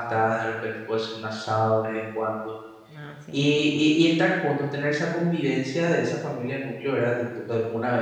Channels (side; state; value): both; identical; correlation 1.00